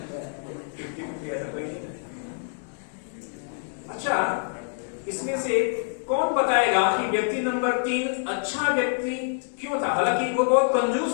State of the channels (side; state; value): right; silent; digital silence